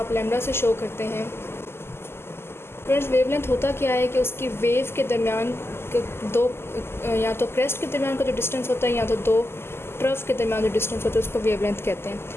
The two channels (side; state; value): right; late; 0.12 ms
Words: लैम्डा से शो करते हैं, स्टूडेंट्स वेवलेंथ होता क्या है कि उसकी वेव के दरमियान दो, या तो क्रेस्ट के दरमियान का जो डिस्टेंस होता है या तो दो ट्रफ के दरमियान जो डिस्टेंस होता है उसको वेवलेंथ कहते हैं।